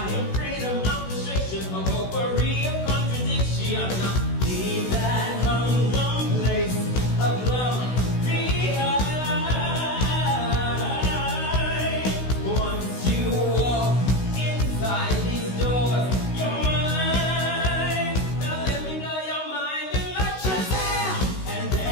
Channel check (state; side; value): late; right; 16 ms